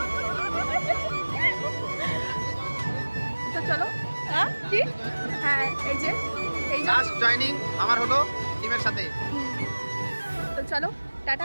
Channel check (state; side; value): inverted; both; correlation -1.00